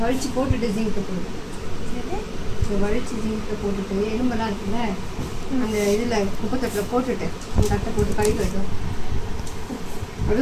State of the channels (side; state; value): both; identical; correlation 1.00